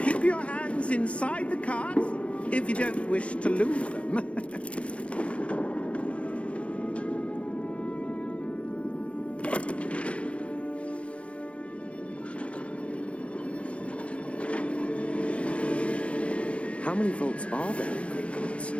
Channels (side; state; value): right; late; 0.062 ms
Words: Keep your hands inside the cart if you don't wish to lose them. How many vaults are there in Gringotts?